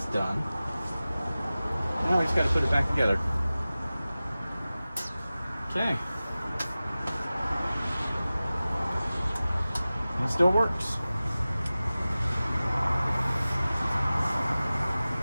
done. Now we just got to put it back together. Okay. It still works.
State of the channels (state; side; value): inverted; both; correlation -0.97